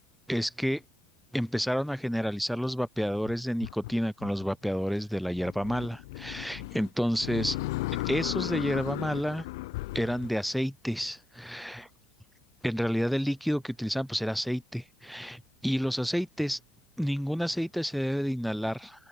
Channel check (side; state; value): both; normal; correlation 0.91